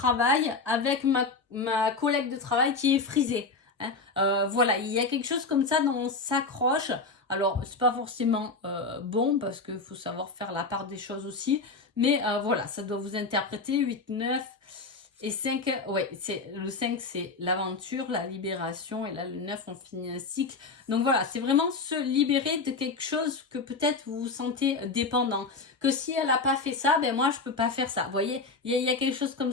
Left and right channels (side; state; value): right; quieter; 4.0 dB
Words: avec ma collègue de travail qui est frisée. Hein. Voilà, il y a quelque chose comme ça dont on s'accroche. Alors, c'est pas forcément bon parce qu'il faut savoir faire la part des choses aussi. Mais voilà, ça doit vous interpréter 8, 9 et 5. Ouais, le 5, c'est l'aventure, la libération. Et là, le 9, on finit un cycle. Donc voilà, c'est vraiment se libérer de quelque chose que peut-être vous vous sentez dépendant. Que si elle n'a pas fait ça, moi, je peux pas faire ça. Vous voyez, il y a quelque chose comme